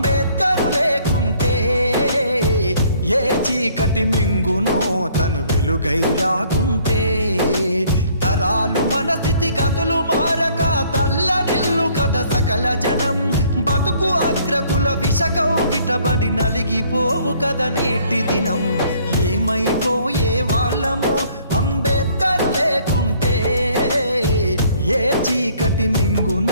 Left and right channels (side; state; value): both; inverted; correlation -0.61